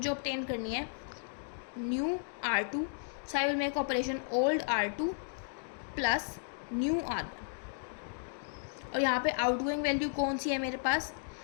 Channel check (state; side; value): silent; right; digital silence